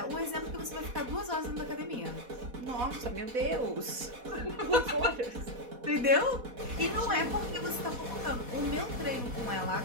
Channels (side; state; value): left; late; 4.1 ms